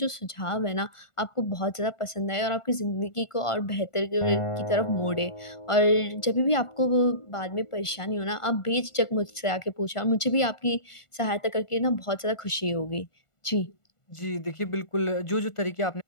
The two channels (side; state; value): right; late; 1.5 ms